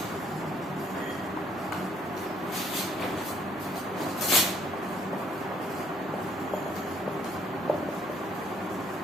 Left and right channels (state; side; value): normal; both; correlation 0.65